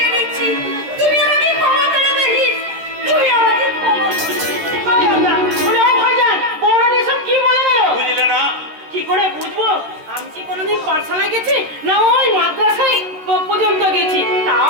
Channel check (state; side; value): late; left; 13 ms